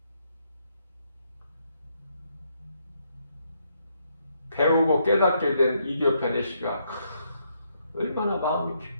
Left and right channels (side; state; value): both; inverted; correlation -0.75